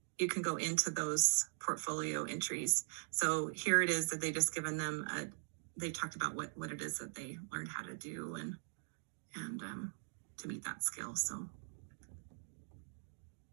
those portfolio entries. So here it is that they just given them they talked about what it is that they learned how to do and to meet that skill. So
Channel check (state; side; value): silent; left; digital silence